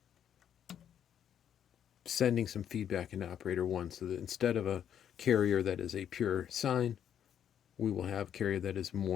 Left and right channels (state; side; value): quieter; right; 9.3 dB